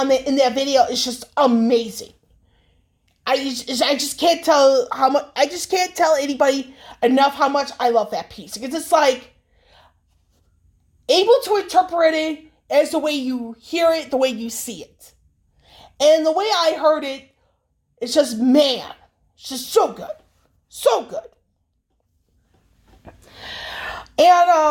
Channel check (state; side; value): identical; both; correlation 1.00